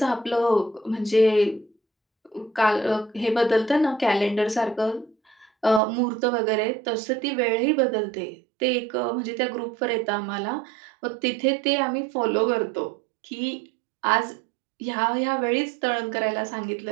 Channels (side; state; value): left; drops out; at 5.8 s